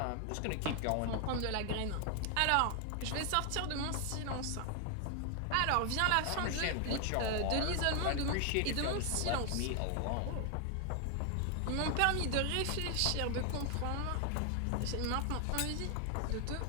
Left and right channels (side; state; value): both; different; correlation 0.00